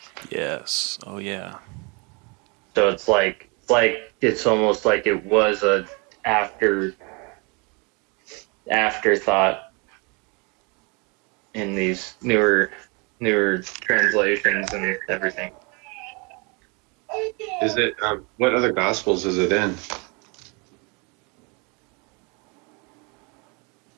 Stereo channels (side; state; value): left; quieter; 31.1 dB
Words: Yes. Oh, yeah. So it's almost like it was a afterthought in these newer translations and everything. Is it? What other gospels is it in?